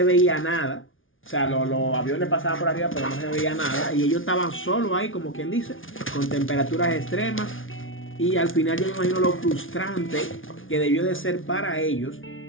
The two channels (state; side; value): late; right; 0.58 ms